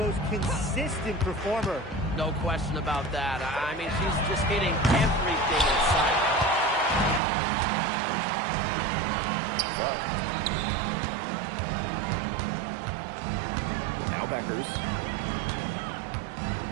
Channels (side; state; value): left; drops out; at 7.2 s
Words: consistent performer. No question about that. I mean, she's just hitting everything in sight. But Beckers.